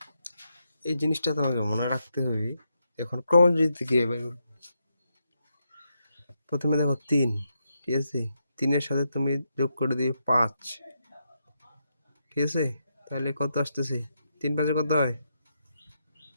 এই জিনিসটা তোমাকে মনে রাখতে হবে। এখন ক্রমযোজিত কিভাবে বের করব? প্রথমে দেখো 3, ঠিক আছে, 3-এর সাথে তুমি যোগ করে দিবে 5, ঠিক আছে, তাহলে কত আসতেছে, 3 5 কত হয়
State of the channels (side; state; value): both; inverted; correlation -0.82